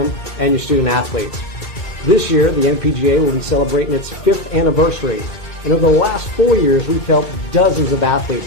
and your student athletes. This year, the NPGA will be celebrating its 5th anniversary, and over the last 4 years, we've helped dozens of athletes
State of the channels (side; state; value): right; late; 2.3 ms